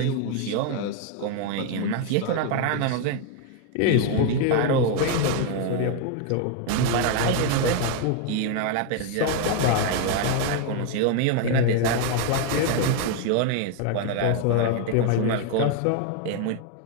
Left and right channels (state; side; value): different; both; correlation 0.01